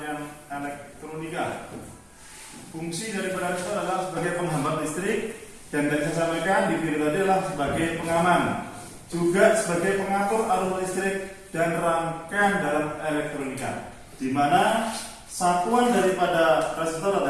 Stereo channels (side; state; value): both; identical; correlation 1.00